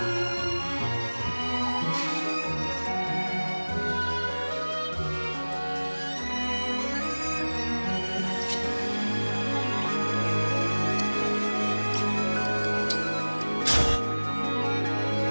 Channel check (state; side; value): inverted; both; correlation -1.00